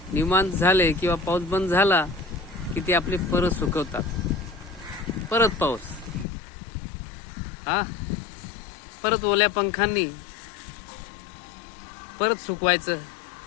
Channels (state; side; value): drops out; right; at 6.2 s